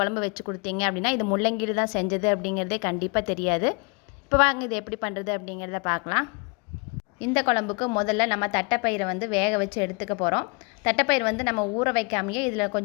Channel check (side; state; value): right; quieter; 31.7 dB